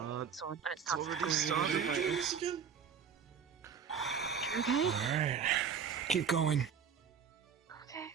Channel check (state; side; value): quieter; left; 7.0 dB